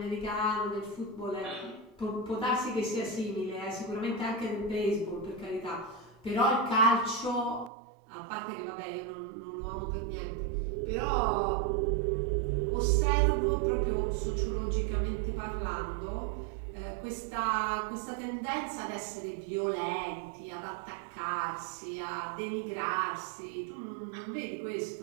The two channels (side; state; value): left; drops out; at 7.7 s